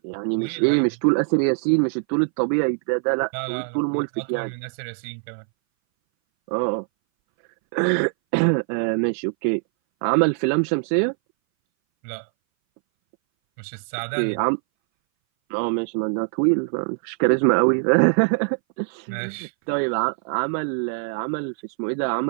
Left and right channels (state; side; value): silent; left; 60 dB below the other